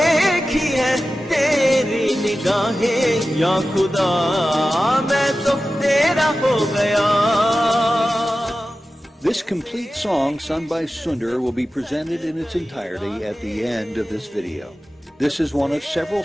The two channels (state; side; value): normal; both; correlation 0.94